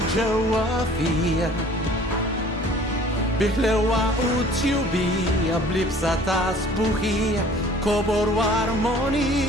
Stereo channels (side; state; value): both; normal; correlation 0.51